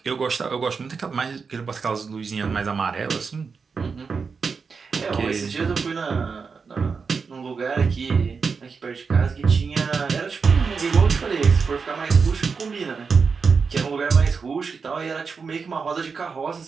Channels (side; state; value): left; quieter; 5.3 dB